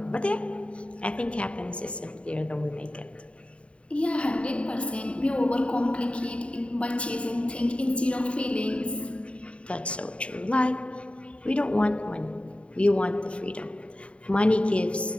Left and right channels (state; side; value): late; right; 0.061 ms